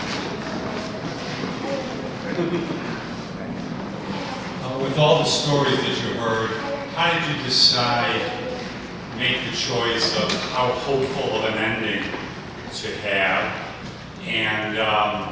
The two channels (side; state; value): both; identical; correlation 1.00